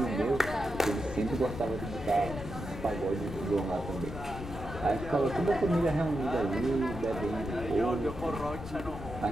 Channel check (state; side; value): noise; left; rumble, 10 dB below the sound